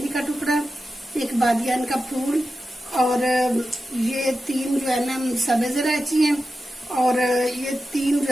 का टुकड़ा, एक बादियान का फूल और ये 3 जो है ना सब्ज इलायची हैं और ये 3 जो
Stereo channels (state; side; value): normal; both; correlation 0.91